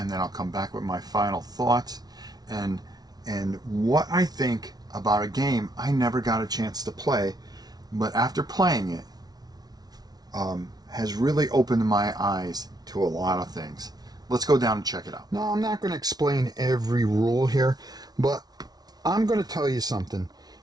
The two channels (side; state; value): left; late; 0.19 ms